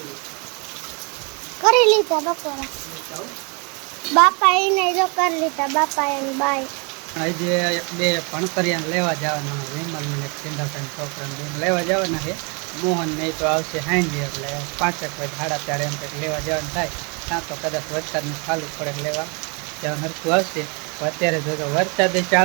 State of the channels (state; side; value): quieter; left; 33.5 dB